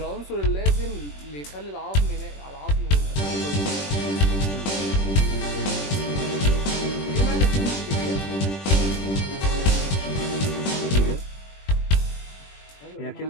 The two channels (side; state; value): right; late; 21 ms